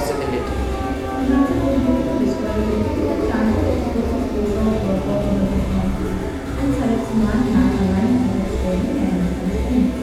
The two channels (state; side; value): identical; both; correlation 1.00